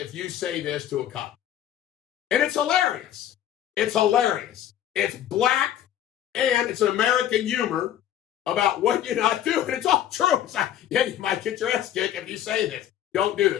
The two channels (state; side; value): quieter; right; 11.2 dB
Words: you say this to a cop. And it's hilarious. It's hilarious. It's black, and it's an American humor about what you're not doing. It's all true. It's like, yeah, you might get your ass kicked if you say this. Don't do